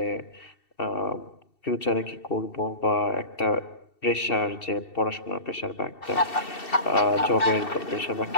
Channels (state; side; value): late; right; 2.7 ms